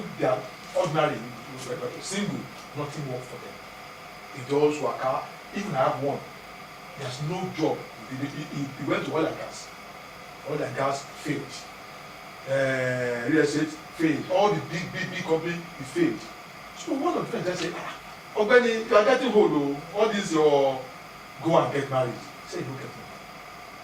they are ordinary, single, nothing works for them. They just work out. Even I have one, there's no job. He went to oil and gas. Oil and gas failed. Real estate failed. All the big company, he failed. So one of the friends just said, Ogbeni, you are getting old, all this your go and get married. He said, look at me.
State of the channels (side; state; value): both; identical; correlation 1.00